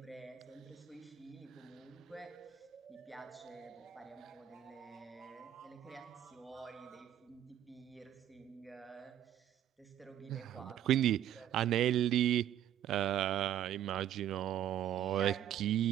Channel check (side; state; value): left; quieter; 11.1 dB